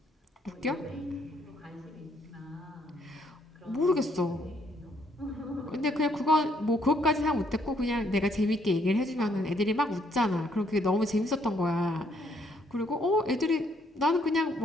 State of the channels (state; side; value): normal; both; correlation 0.70